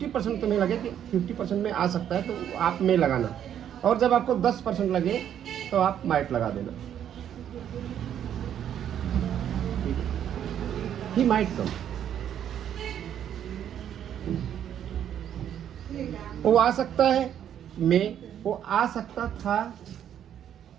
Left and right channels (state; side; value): quieter; left; 9.8 dB